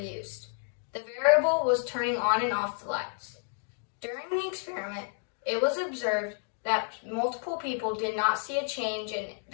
The variable was turning on and off the lights. During the experiment, it was observed that multiple people did not see a change in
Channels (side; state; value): right; silent; 57 dB below the other